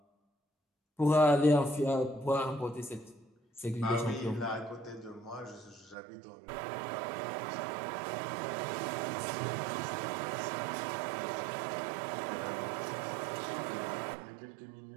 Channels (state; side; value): drops out; left; at 6.0 s